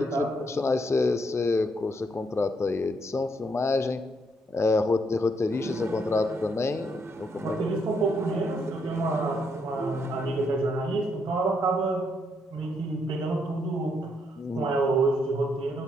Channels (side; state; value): both; normal; correlation 0.75